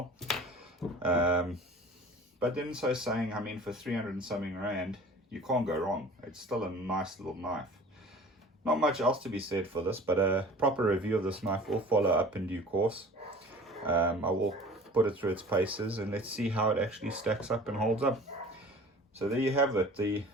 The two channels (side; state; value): both; normal; correlation 0.44